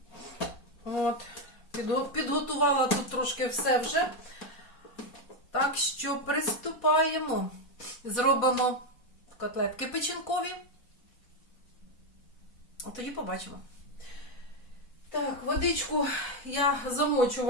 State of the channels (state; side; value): late; right; 4.2 ms